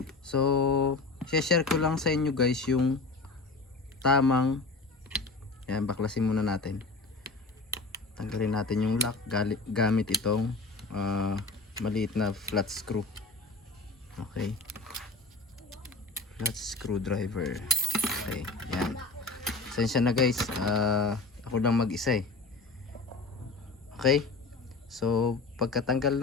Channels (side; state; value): right; quieter; 3.6 dB